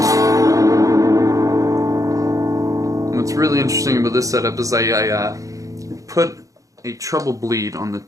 What's really interesting about this setup is I put a treble bleed on the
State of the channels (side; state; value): left; late; 0.16 ms